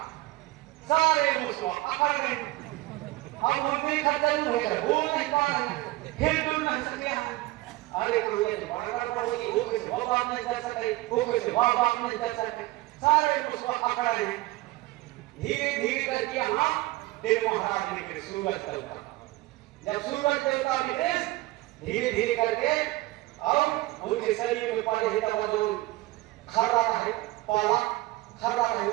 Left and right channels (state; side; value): quieter; left; 19.2 dB